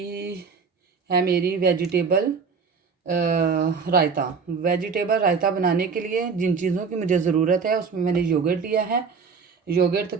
है मेरी वेजिटेबल रायता। वेजिटेबल रायता बनाने के लिए जिन चीज़ों की मुझे ज़रूरत है उसमें मैंने योगर्ट लिया है। योगर्ट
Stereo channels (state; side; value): quieter; left; 5.4 dB